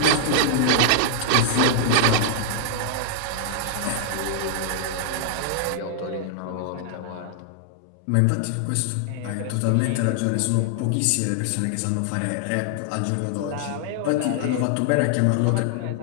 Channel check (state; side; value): different; both; correlation 0.00